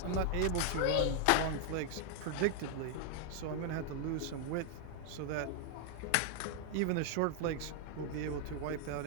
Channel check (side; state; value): both; different; correlation 0.00